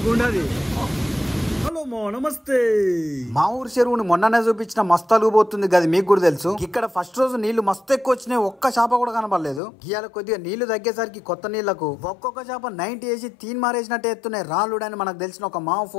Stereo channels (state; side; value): drops out; right; at 9.6 s